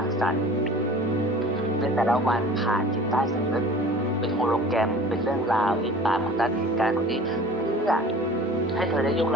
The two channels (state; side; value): normal; both; correlation 0.43